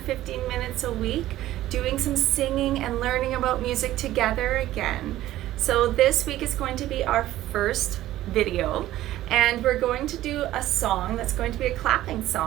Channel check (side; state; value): left; quieter; 14.5 dB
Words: minutes a week doing some singing and learning about music together again. So this week is going to be our first video, and we're going to do a song that's going to be a clapping